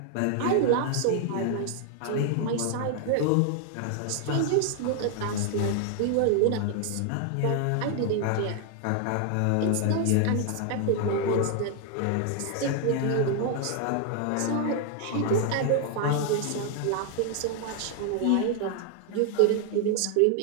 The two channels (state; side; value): different; both; correlation 0.00